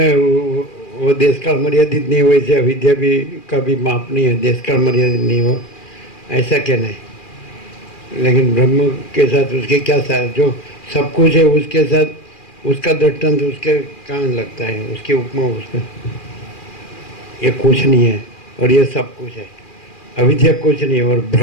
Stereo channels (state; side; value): late; right; 2.4 ms